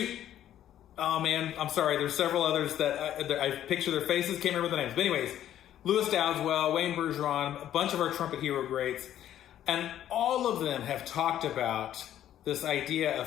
oh man, I'm sorry. There's several others that I picture their faces, can't remember the names. But anyways, Lewis Dowdeswell, Wayne Bergeron, a bunch of our trumpet hero greats, and all of them have talked about this idea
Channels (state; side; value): quieter; right; 11.6 dB